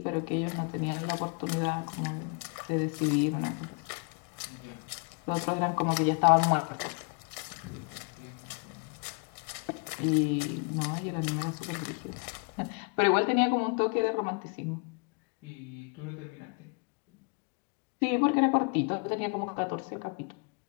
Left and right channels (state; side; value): quieter; right; 36.5 dB